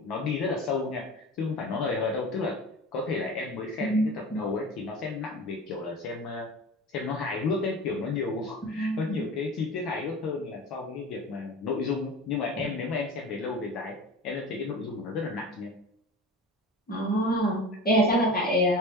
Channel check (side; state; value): both; normal; correlation 0.34